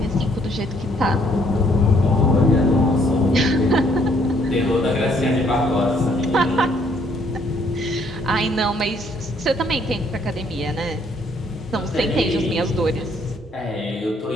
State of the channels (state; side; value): normal; both; correlation 0.66